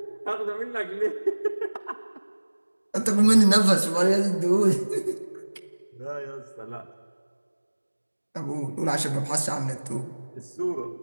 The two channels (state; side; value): inverted; both; correlation -1.00